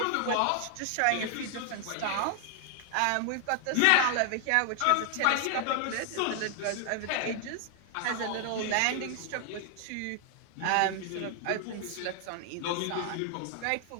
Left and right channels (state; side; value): different; both; correlation 0.00